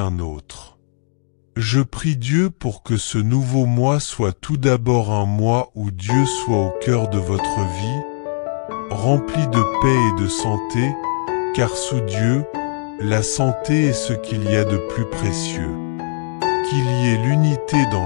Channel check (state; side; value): silent; right; digital silence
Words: autre. Je prie Dieu pour que ce nouveau mois soit tout d'abord un mois où Dieu soit au cœur de votre vie, rempli de paix et de santé, car sous Dieu, La santé est ce qu'il y a de plus précieux. Qu'il y ait l'unité